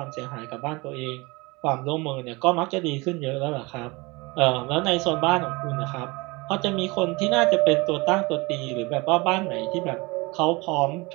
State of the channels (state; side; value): quieter; left; 24.8 dB